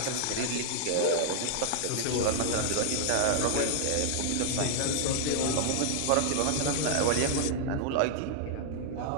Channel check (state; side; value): different; both; correlation -0.01